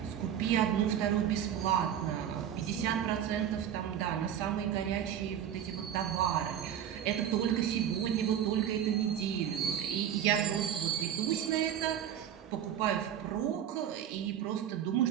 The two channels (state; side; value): quieter; left; 9.7 dB